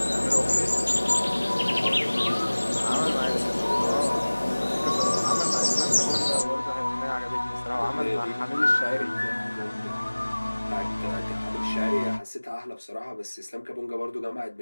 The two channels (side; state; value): both; inverted; correlation -1.00